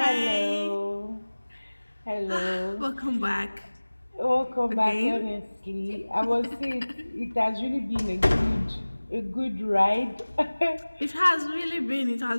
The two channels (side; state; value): both; inverted; correlation -1.00